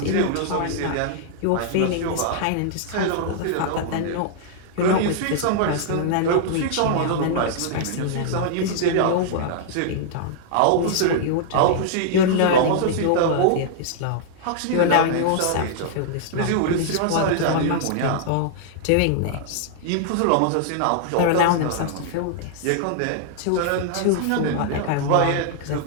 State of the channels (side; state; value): both; different; correlation -0.01